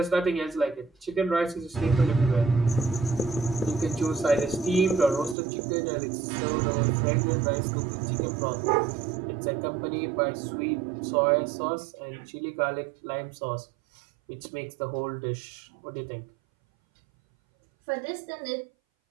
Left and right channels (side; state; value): left; drops out; at 5.4 s